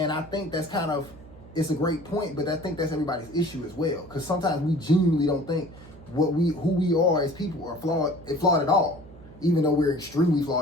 I think that's it's a great point, but I think that's everybody's issue as well. Because sometimes we genuinely don't think who we are as people are flawed at all, even though we're extremely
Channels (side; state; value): right; noise; hum, 20 dB below the sound